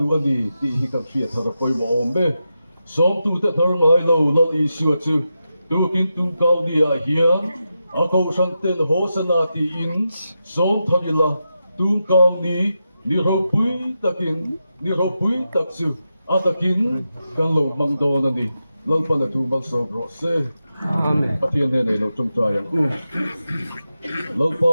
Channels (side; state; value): both; inverted; correlation -0.89